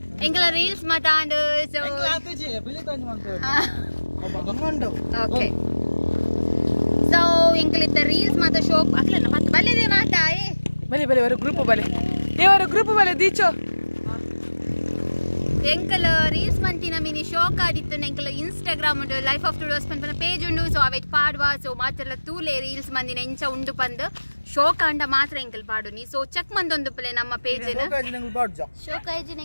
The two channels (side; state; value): both; inverted; correlation -1.00